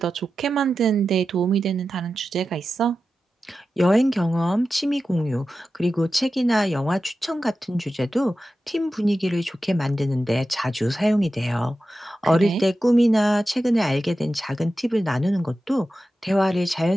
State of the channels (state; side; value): normal; both; correlation 0.92